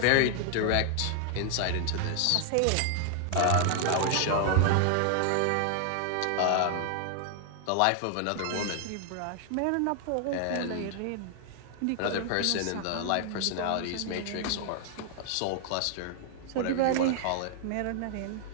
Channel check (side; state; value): both; different; correlation 0.00